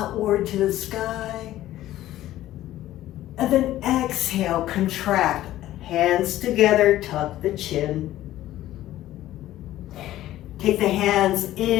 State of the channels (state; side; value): quieter; right; 14.3 dB